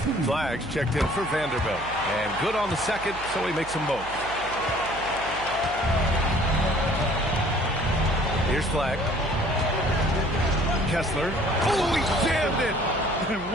Flags checked in for Vanderbilt. And good on the second, so he makes them both. Here's Flag. Kessler. Oh, he jammed it! And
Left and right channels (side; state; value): right; noise; hum, 15 dB below the sound